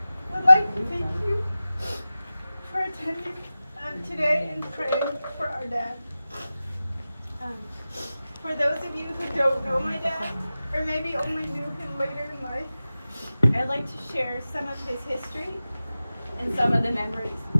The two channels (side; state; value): both; inverted; correlation -0.96